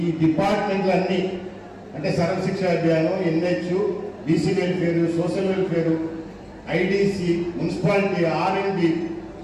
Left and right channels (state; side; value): identical; both; correlation 1.00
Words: డిపార్ట్మెంట్లన్నీ అంటే సర్వశిక్ష అభియానం, NH, BC welfare, social welfare, IDC, municipality, RMD,